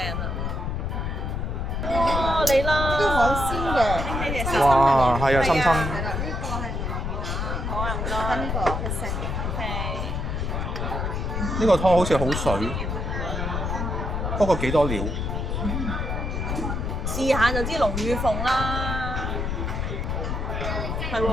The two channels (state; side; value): noise; left; rumble, 2 dB below the sound